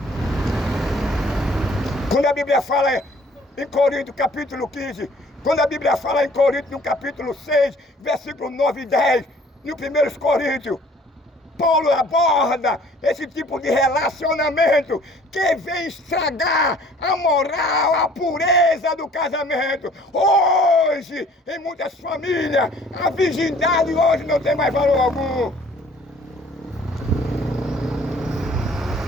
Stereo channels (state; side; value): normal; both; correlation 0.54